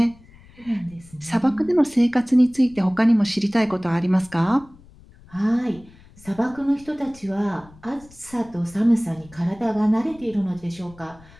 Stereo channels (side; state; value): left; noise; rumble, 24 dB below the sound